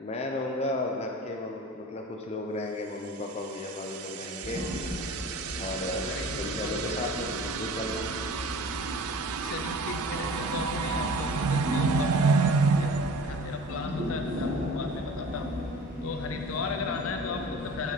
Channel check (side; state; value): both; normal; correlation 0.41